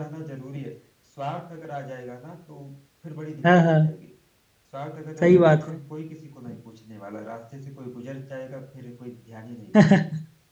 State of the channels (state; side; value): identical; both; correlation 1.00